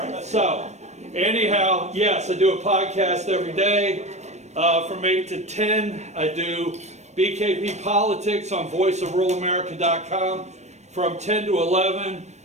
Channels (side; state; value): left; late; 0.33 ms